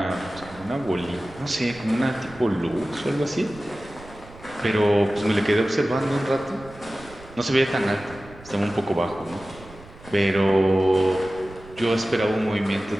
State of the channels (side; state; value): right; noise; rumble, 20 dB below the sound